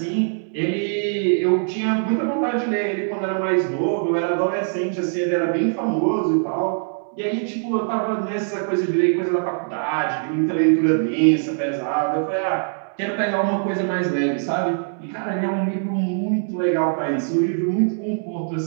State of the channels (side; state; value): left; silent; digital silence